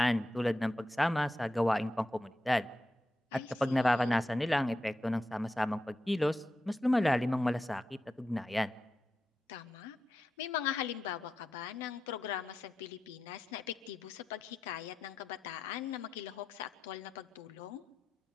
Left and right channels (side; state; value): both; normal; correlation 0.89